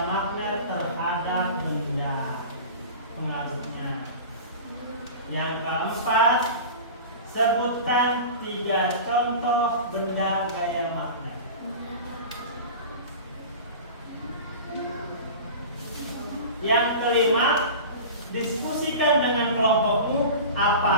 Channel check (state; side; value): inverted; both; correlation -0.34